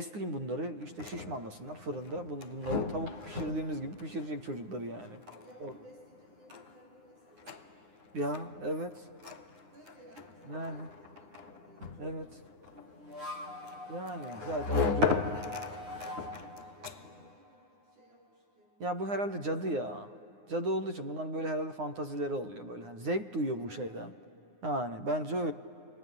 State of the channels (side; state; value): left; late; 9.7 ms